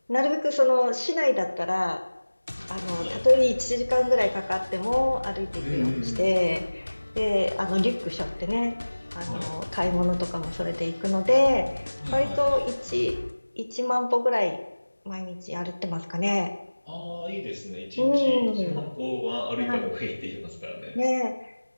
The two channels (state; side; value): inverted; both; correlation -1.00